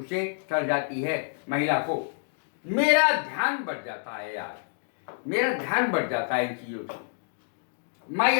चढ़ जाती है, महिला को। मेरा ध्यान बढ़ जाता है यार, मेरा ध्यान बढ़ जाता है इन चीजों से। My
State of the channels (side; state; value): right; silent; digital silence